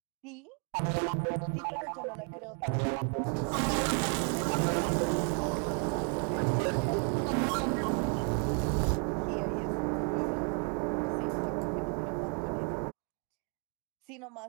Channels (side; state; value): left; quieter; 39.2 dB